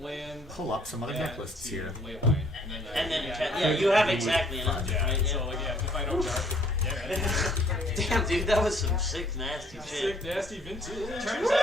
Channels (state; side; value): normal; both; correlation 0.61